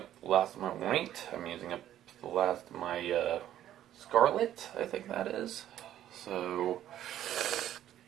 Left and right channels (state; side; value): quieter; left; 11.9 dB